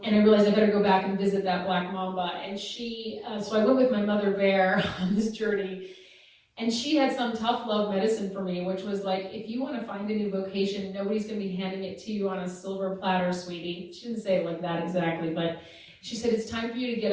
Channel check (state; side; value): identical; both; correlation 1.00